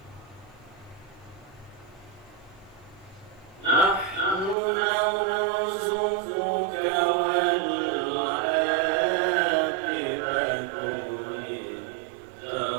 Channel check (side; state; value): left; drops out; at 4.5 s